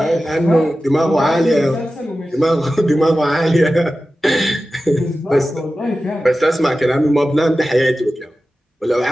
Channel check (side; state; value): both; normal; correlation 0.94